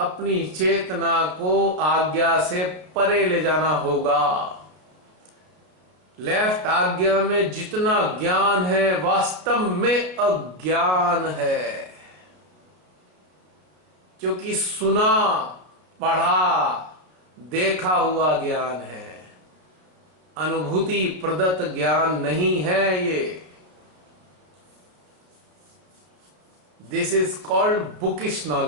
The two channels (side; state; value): left; late; 33 ms